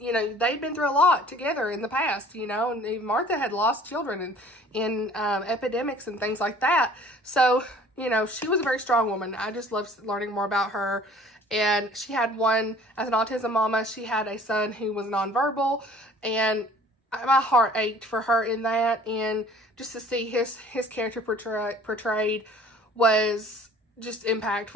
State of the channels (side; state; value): both; normal; correlation 0.51